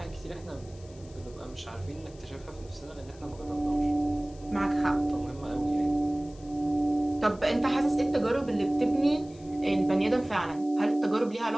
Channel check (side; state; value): left; noise; hiss, 25 dB below the sound